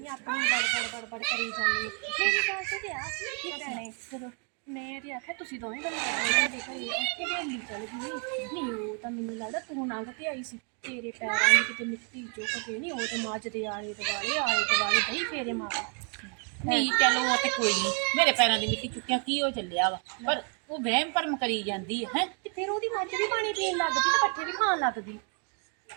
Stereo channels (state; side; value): quieter; left; 36.9 dB